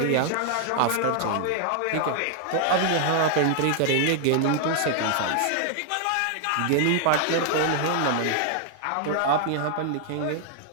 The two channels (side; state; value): both; different; correlation 0.00